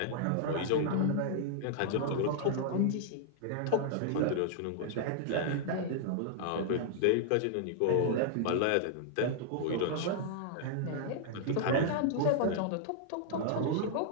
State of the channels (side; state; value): both; different; correlation -0.01